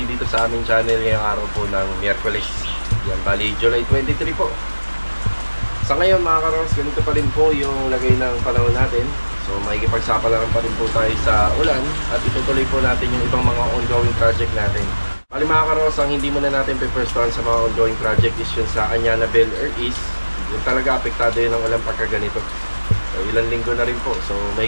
dito sa aming channel ngayong araw po ng Miyerkules. Yan, bali July 23 po. Sa ngayon mga karongos, ganito pa rin po yung lagay ng panahon natin. So makikipagsapalaran pa rin po tayo sa ulan at itutuloy po natin yung ibang mga ongoing project natin. Bali mga karongos, ang hindi muna natin pe-firstuhan sa mga ongoing project is yun sa Anyana Bel Air East. Yung talaga apektado yun ng ulan pagka ganito. So ilang linggo na rin po, so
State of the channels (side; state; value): both; inverted; correlation -1.00